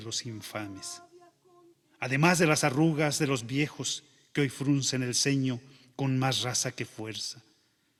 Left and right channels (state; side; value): identical; both; correlation 1.00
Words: infames. Además de las arrugas de los viejos que hoy fruncen el ceño con más raza que fuerza,